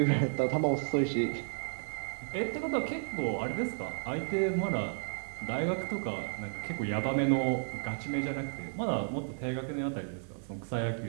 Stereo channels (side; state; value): left; silent; digital silence